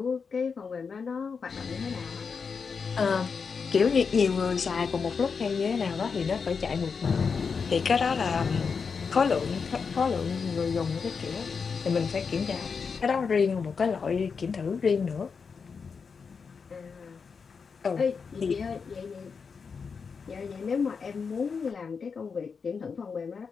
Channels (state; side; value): quieter; right; 5.6 dB